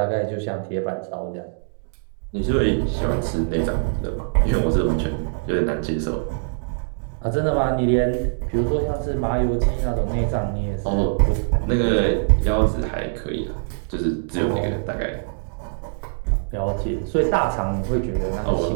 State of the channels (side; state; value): left; silent; digital silence